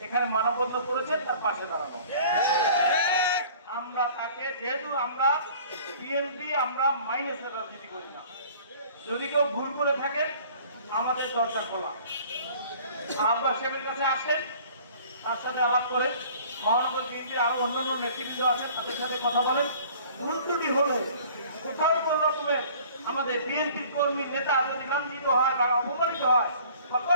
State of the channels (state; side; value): inverted; both; correlation -0.50